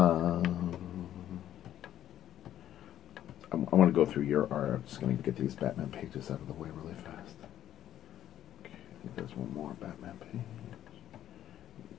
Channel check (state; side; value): quieter; right; 11.5 dB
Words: I want to go through your art. I'm just going to get these Batman pages out of the way really fast. Okay, I think there's one more Batman page.